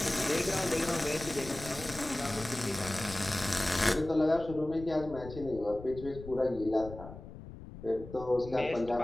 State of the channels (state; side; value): noise; left; rumble, 14 dB below the sound